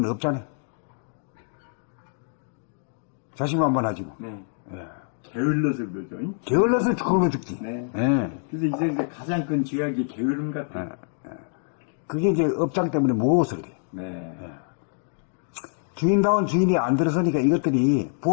없잖아. 자신만만하지 뭐. 네. 게을러서 그러죠. 게을러서 굶어 죽지. 네. 네. 그래서 이제 가장 큰 죄악이 게으름 같아요. 그게 이제 업장 때문에 무거워서 그래. 네. 주인다운 주인이 안 들어서니까 이것들이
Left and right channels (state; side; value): silent; right; 61 dB below the other